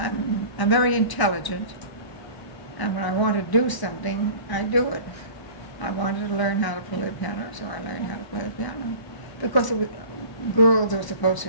very intelligent. And when I want to do something, I do it. I wanted to learn how to play the piano, so I learned how to play the piano. Because girls were supposed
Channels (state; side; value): late; right; 1.0 ms